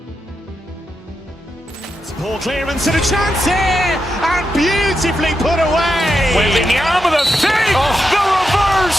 Poor clearance and a chance here, and beautifully put away. Waving the arm of the fake, the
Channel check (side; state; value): both; normal; correlation 0.86